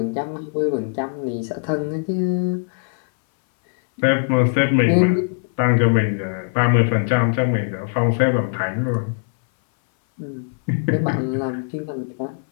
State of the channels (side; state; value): right; silent; 60 dB below the other